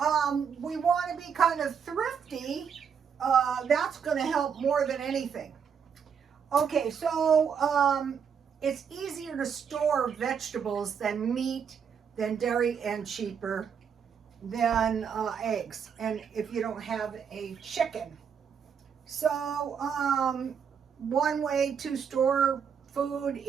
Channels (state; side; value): quieter; left; 7.0 dB